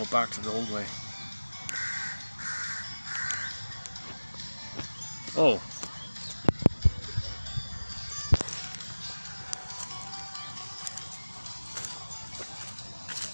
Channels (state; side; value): inverted; both; correlation -1.00